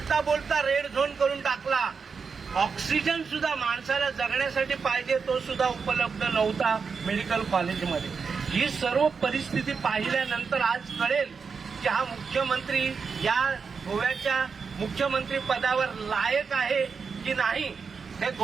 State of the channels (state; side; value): quieter; left; 5.4 dB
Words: बोलता रेड झोन करून टाकला. ऑक्सिजन सुद्धा माणसाला जगण्यासाठी पाहिजे तो सुद्धा उपलब्ध नव्हता मेडिकल कॉलेजमध्ये. ही सर्व परिस्थिती पाहिल्यानंतर आज कळेल की हा मुख्यमंत्री या गोव्याच्या मुख्यमंत्री पदावर लायक आहे की नाही हे